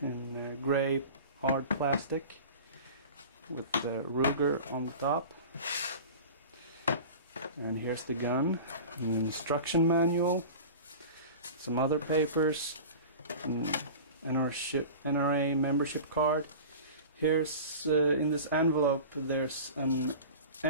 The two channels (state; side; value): inverted; both; correlation -0.36